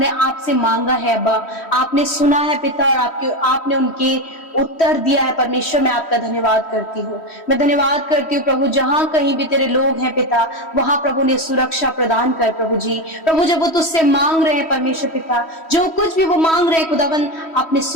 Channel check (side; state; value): right; late; 3.1 ms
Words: आपसे मांगा है अब्बा, आपने सुना है पिता और आपने उनके उत्तर दिया है परमेश्वर, मैं आपका धन्यवाद करती हूँ। मैं धन्यवाद करती हूँ प्रभु जहां कहीं भी तेरे लोग हैं पिता वहां प्रभु ने सुरक्षा प्रदान कर प्रभु जी। प्रभु जब वो तुझसे मांग रहे हैं परमेश्वर पिता, जो कुछ भी वो मांग रहे हैं खुदावन आपने